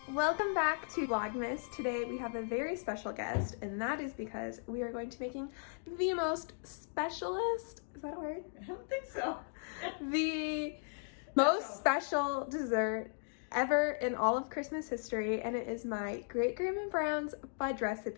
Welcome back to Vlogmas. Today we have a very special guest, and that is because we are going to be making the most specialist, is that a word? I don't think so. The most special dessert ever in all of Christmas history, and it is my Great Grandma Brown's fudge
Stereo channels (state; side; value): silent; right; digital silence